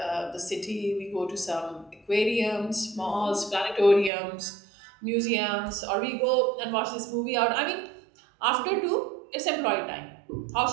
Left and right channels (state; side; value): drops out; left; at 4.1 s